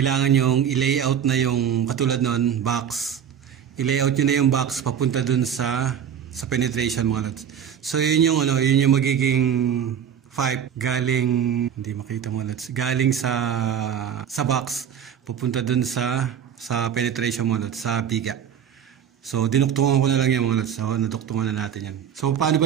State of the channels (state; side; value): quieter; left; 8.6 dB